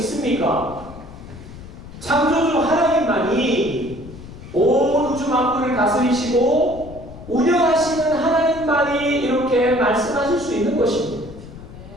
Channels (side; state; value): left; noise; rumble, 15 dB below the sound